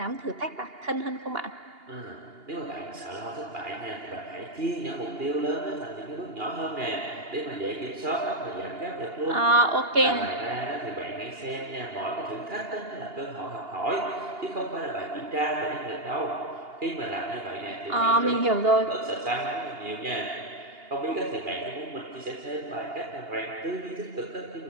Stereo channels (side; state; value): left; late; 2.8 ms